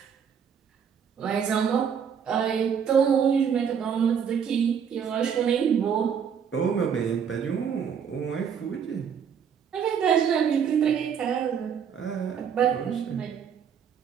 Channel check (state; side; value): quieter; left; 7.5 dB